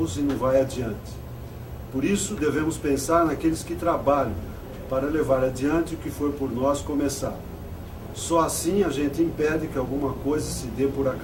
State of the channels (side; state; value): both; identical; correlation 1.00